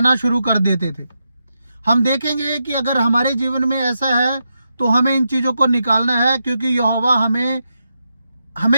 शुरू कर देते थे। हम देखेंगे कि अगर हमारे जीवन में ऐसा है तो हमें इन चीज़ों को निकालना है, क्योंकि यहोवा हमें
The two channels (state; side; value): inverted; both; correlation -0.85